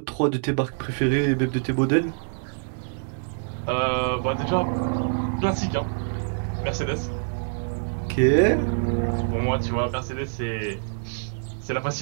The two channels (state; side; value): silent; left; digital silence